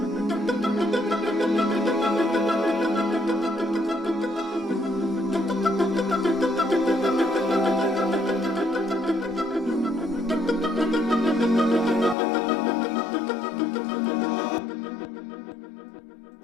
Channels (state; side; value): drops out; right; at 12.2 s